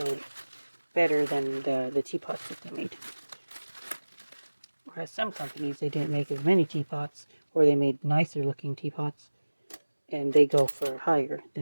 better than the teapots that they made. Whereas some companies, they didn't make as many teapots, or they made nicer looking teapots, and they go for higher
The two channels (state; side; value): inverted; both; correlation -1.00